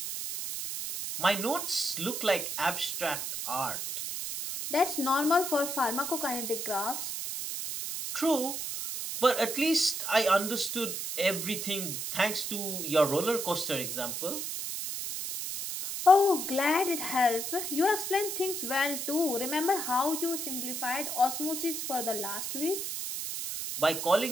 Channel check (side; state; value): right; noise; hiss, 4 dB below the sound